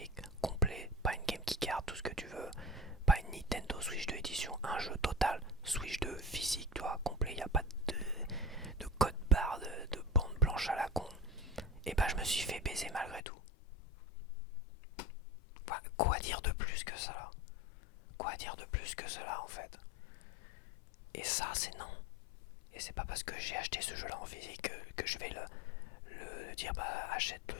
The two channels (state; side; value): drops out; right; at 13.2 s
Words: complet, pas une game qui card, tout ce que tu veux, pas une Nintendo Switch 2 édition, un jeu total Switch 2 physique, tu vois, complet, il n'y a pas de code barre, de bande blanche à la con. Et bah je me suis fait baiser malgré tout. Enfin, quoi dire de plus que ça? Quoi dire de plus que cela en fait? Et ça c'est non. Et c'est pas parce que j'ai acheté ce jeu là en physique que je vais le dire bah achète